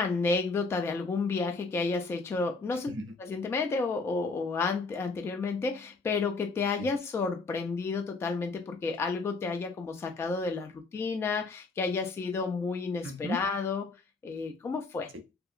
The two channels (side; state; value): right; quieter; 3.8 dB